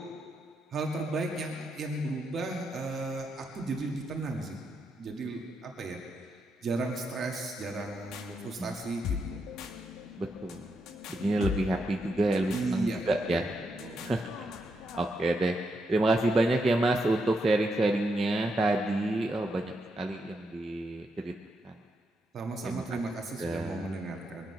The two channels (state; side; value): normal; both; correlation 0.82